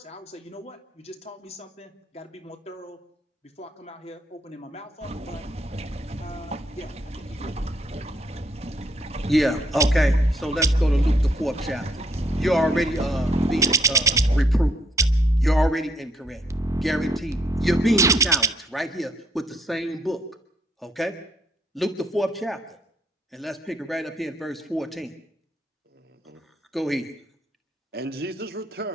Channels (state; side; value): normal; both; correlation 0.71